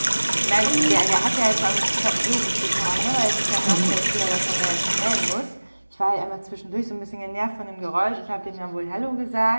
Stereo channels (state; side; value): inverted; both; correlation -1.00